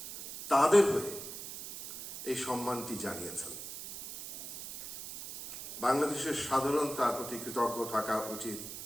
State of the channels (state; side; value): noise; right; hiss, 10 dB below the sound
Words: তাদের হয়ে এই সম্মানটি জানিয়েছেন। বাংলাদেশের সাধারণ তার প্রতি কৃতজ্ঞ থাকা উচিত।